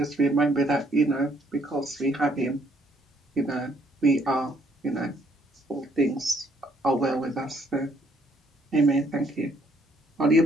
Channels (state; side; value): normal; both; correlation 0.67